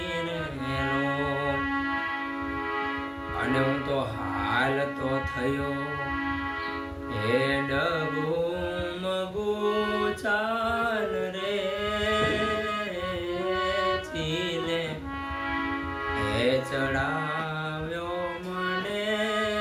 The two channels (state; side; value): identical; both; correlation 1.00